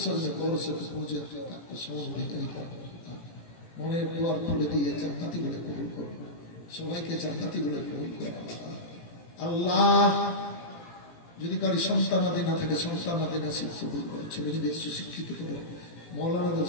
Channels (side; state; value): right; late; 17 ms